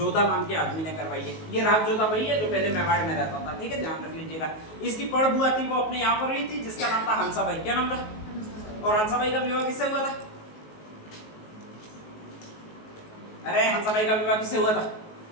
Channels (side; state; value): right; late; 19 ms